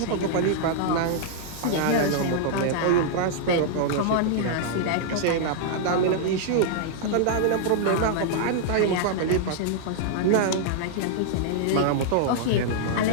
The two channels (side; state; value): both; different; correlation -0.01